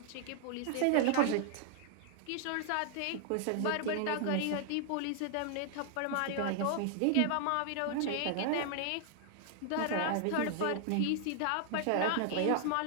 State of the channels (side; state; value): both; different; correlation 0.00